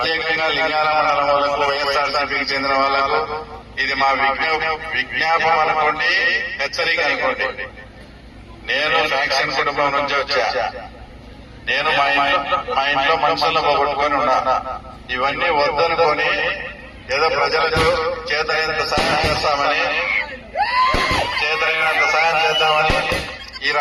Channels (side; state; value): both; identical; correlation 1.00